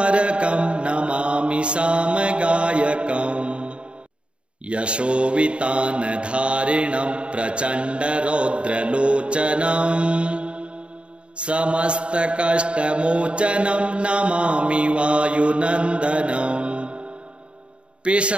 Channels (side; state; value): left; late; 0.057 ms